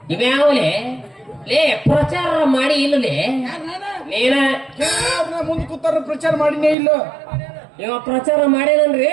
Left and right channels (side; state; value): left; drops out; at 6.8 s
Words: ಇವ್ಯಾವಲೇ ಲೇ ಪ್ರಚಾರ ಮಾಡಿ ಇಲ್ಲಲೇ ನೀನ ಮುಂದೆ ಕೂತಾರ ಪ್ರಚಾರ ಮಾಡಿನೇ ಇಲ್ಲ ಇವ ಪ್ರಚಾರ ಮಾಡೇನನ್ರಿ